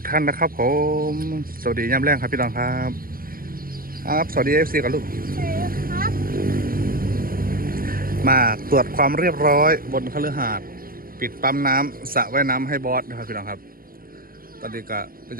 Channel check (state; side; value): late; left; 0.42 ms